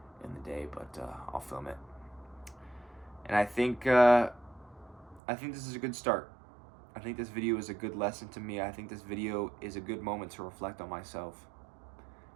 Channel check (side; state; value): left; drops out; at 5.2 s